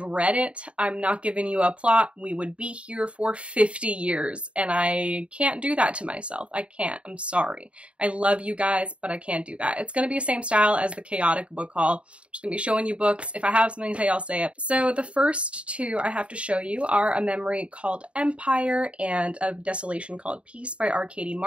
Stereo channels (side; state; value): left; late; 0.060 ms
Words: read it, I'm not giving you a plot. We would be here for 50 years, and I can't do that to myself. I can't. I'm sorry. I love you guys, but I can't do that. It's going to be the same style as the chaotic book haul. I'm just going to be showing you books. If I have something to say, I'll say it. So the first 2 I have to show you are A Memory Called Empire and A Desolation Called Peace by R. Katie